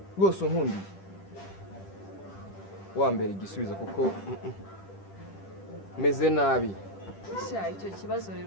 rwose unkundiye wambere igisubizo kuko meze nabi icyo kibazo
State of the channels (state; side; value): late; right; 10 ms